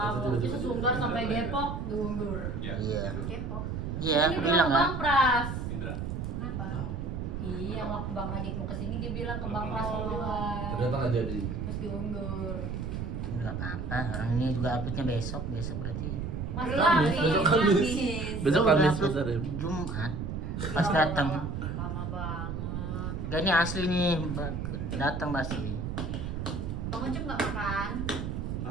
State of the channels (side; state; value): right; noise; rumble, 4 dB below the sound